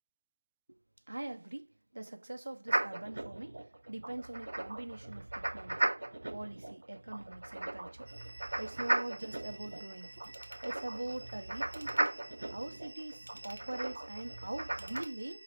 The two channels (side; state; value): both; inverted; correlation -1.00